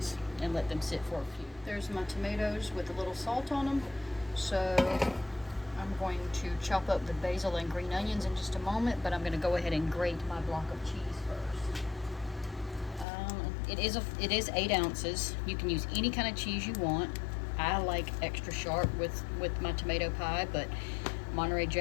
and let them sit for a few. There's my tomatoes with a little salt on them. So I'm going to chop up the basil and green onions in just a moment, but I'm going to go ahead and grate my block of cheese first. It is 8 ounces. You can use any kind of cheese you want. I like extra sharp with my tomato pie, but Monterey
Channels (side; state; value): right; drops out; at 13.1 s